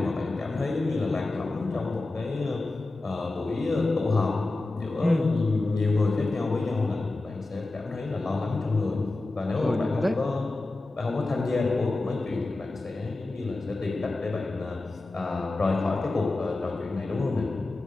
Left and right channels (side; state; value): right; quieter; 3.0 dB